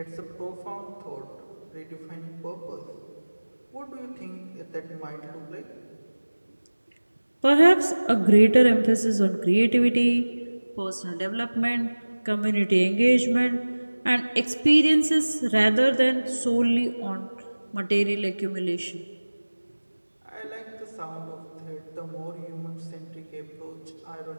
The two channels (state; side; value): inverted; both; correlation -1.00